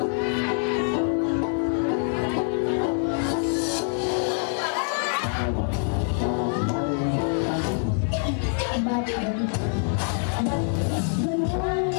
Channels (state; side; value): silent; right; 56 dB below the other